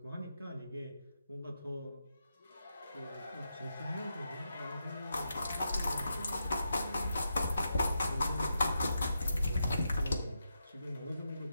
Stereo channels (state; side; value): inverted; both; correlation -0.85